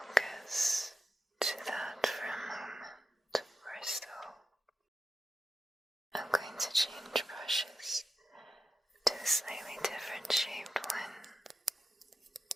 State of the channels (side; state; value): both; normal; correlation 0.90